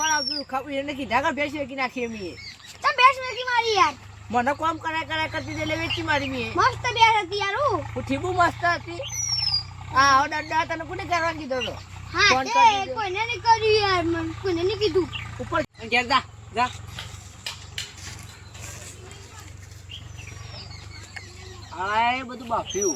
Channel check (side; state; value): both; identical; correlation 1.00